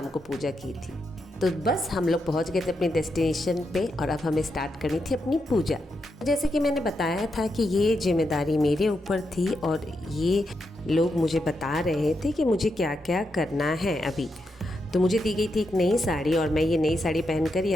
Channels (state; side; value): normal; both; correlation 0.84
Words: को पूजा की थी। तो बस हम लोग पहुँच गए थे अपने डेस्टिनेशन पे और अब हमें स्टार्ट करनी थी अपनी पूजा। जैसे कि मैंने बताया था कि ये जिम्मेदारी मेरे ऊपर थी और ये लोग मुझे बता रहे थे कि मुझे क्या क्या करना है अभी। तो मुझे दी गई थी एक नई साड़ी और मैं ये नई साड़ी पहनकर ही